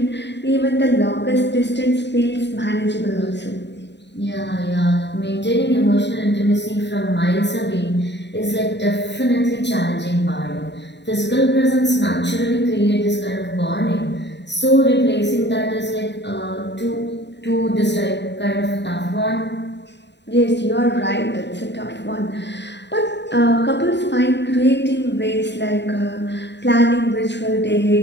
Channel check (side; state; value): right; late; 0.51 ms